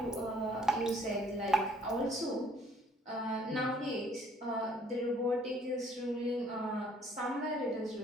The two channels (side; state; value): both; normal; correlation 0.60